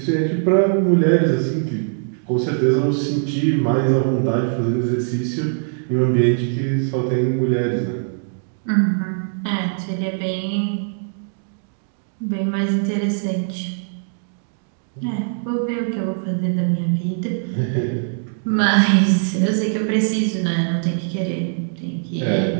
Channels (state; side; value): silent; left; digital silence